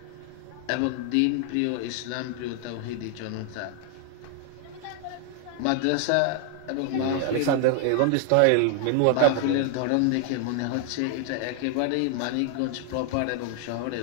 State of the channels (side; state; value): both; different; correlation 0.00